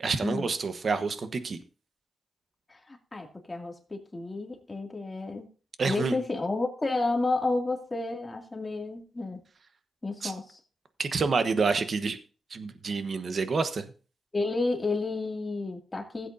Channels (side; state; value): both; normal; correlation 0.87